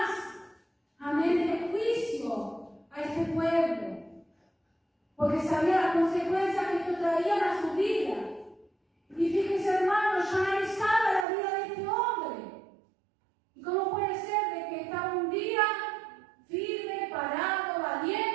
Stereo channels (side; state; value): left; drops out; at 11.2 s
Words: amén, de juicio a este pueblo. Porque sabía las consecuencias que esto traían a su vida. Y fíjense, hermanos, yo analizaba la vida de este hombre. ¿Y cómo puede ser de que estaba un día firme, parado,